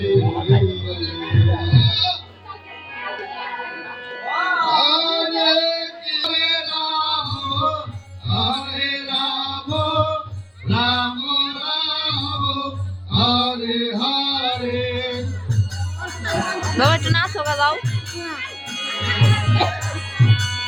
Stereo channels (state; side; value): identical; both; correlation 1.00